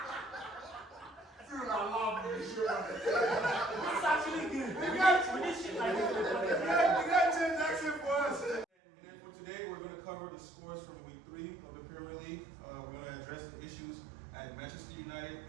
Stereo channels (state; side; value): drops out; left; at 8.7 s